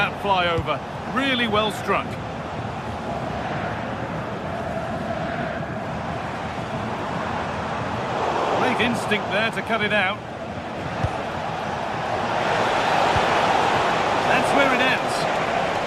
fly over. Really well struck. Great instinct there to cut it out. That's where it ends.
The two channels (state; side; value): identical; both; correlation 1.00